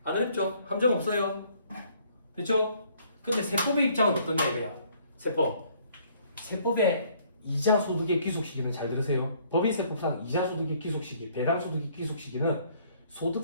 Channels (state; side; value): inverted; both; correlation -0.62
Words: 안 어렵죠? 함정 없어요. 됐죠? 근데 세법의 입장은 어떠냐 이거야. 세법의 이자 소득의 귀속 시기는 잘 들으세요. 법인세법상 이자 소득의 귀속 시기, 배당 소득의 귀속 시기는